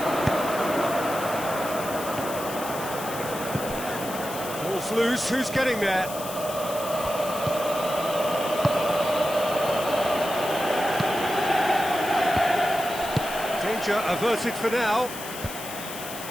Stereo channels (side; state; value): left; noise; hiss, 11 dB below the sound